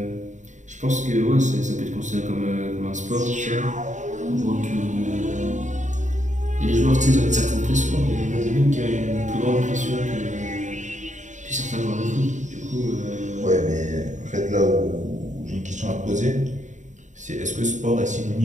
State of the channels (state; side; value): late; left; 0.35 ms